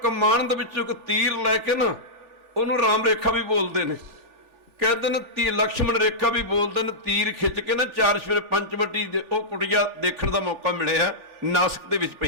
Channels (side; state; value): left; late; 3.4 ms